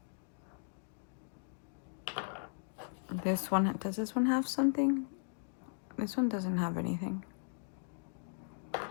This one, does this one have something? This one doesn't have anything.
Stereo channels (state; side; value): silent; right; digital silence